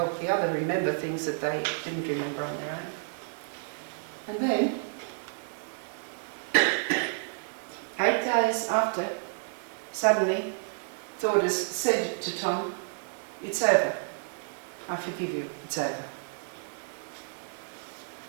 the other remember things that they didn't remember on their own. And then, 8 days after, suddenly, Thordis said to Tom, "It's over. I forgive you. It's over."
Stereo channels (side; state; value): left; silent; digital silence